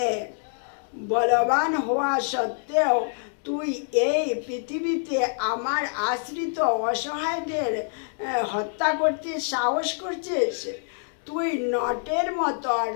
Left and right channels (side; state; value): right; silent; digital silence